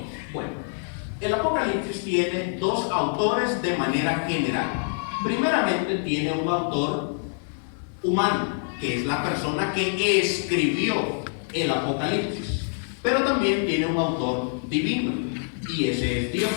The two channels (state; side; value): silent; right; digital silence